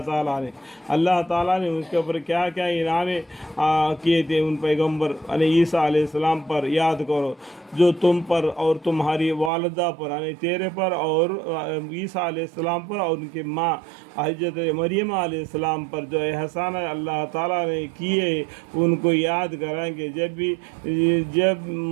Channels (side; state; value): left; drops out; at 9.5 s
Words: ताला ने उसके ऊपर क्या क्या इनाम किए थे उन पैगंबर यानी ईसा अलैहिस्सलाम पर याद करो, जो तुम पर और तुम्हारी वालिदा पर यानी तेरे पर और ईसा अलैहिस्सलाम पर और उनकी माँ हज़रत मरियम अलैहिस्सलाम पर जो एहसान अल्लाह ताला ने किए उनको याद कराएंगे। जब